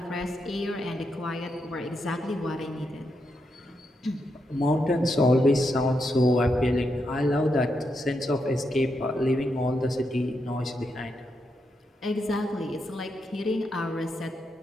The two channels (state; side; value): normal; both; correlation 0.83